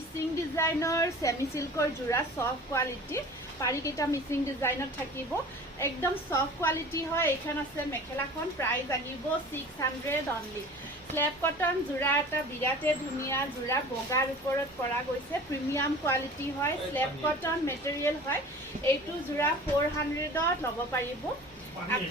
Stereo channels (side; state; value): both; normal; correlation 0.41